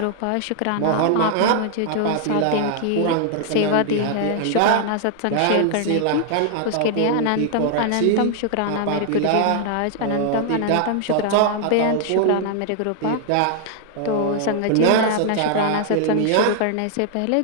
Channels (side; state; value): both; different; correlation -0.01